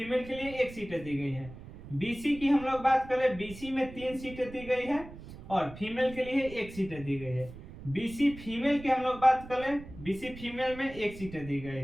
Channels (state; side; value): noise; right; rumble, 15 dB below the sound